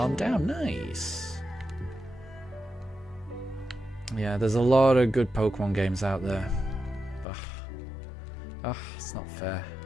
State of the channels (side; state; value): right; drops out; at 7.2 s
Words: down. Nice. Yeah, there's a lot of good Pokemon games out there. Ugh, it's not fair.